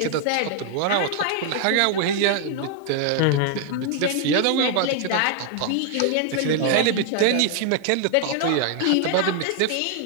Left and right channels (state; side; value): different; both; correlation 0.00